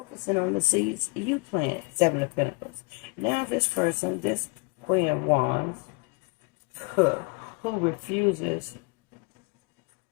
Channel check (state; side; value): quieter; right; 32.1 dB